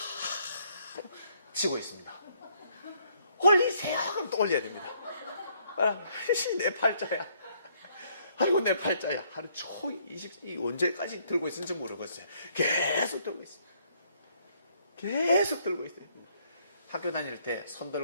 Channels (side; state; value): both; inverted; correlation -0.68